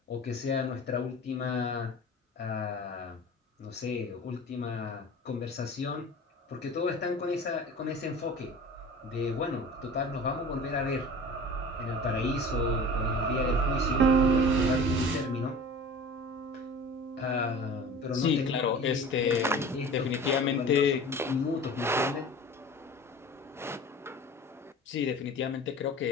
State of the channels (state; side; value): normal; both; correlation 0.39